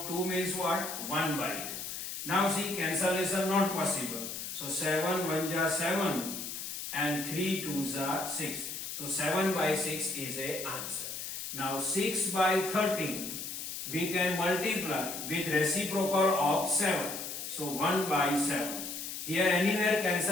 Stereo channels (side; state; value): left; noise; hiss, 6 dB below the sound